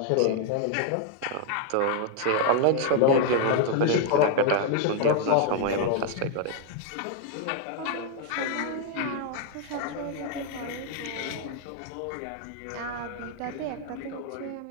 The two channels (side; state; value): both; different; correlation 0.00